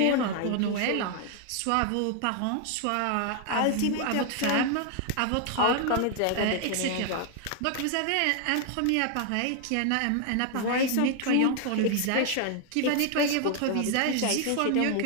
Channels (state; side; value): different; both; correlation 0.00